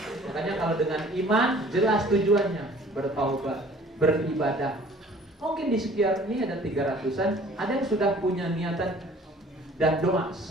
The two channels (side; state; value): both; normal; correlation 0.51